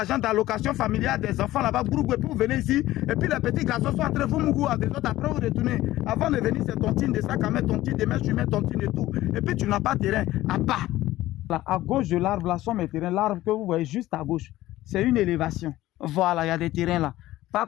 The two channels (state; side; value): quieter; right; 15.9 dB